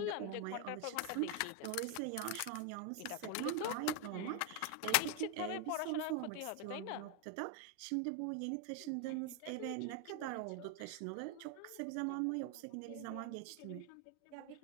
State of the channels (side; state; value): both; different; correlation 0.01